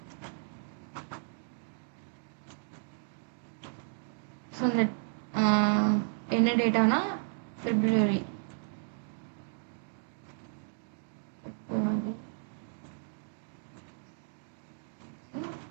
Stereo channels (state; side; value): silent; left; digital silence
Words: ஸோ இந்த என்ன டேட்டானா ஃபெப்ரவரி.